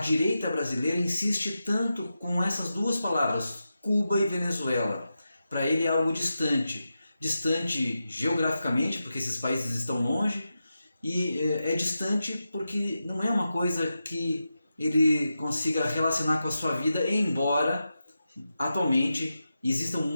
direita brasileira insiste tanto com essas duas palavras, Cuba e Venezuela. Para ele é algo distante. Distante geograficamente, porque esses países estão longe, e é distante porque não é uma coisa que ele consiga relacionar com a sua vida, embora atualmente existam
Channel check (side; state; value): both; inverted; correlation -0.90